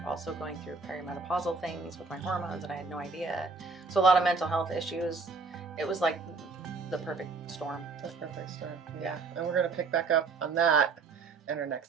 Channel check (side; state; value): left; quieter; 4.4 dB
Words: also going through perimenopausal things with my hormones and I had no idea. So a lot of mental health issues. It was like the perfect storm. The perfect storm. Yeah. And we're going to pick back up on that in our